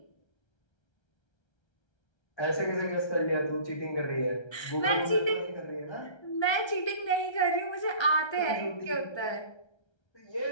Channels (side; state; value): right; late; 1.3 ms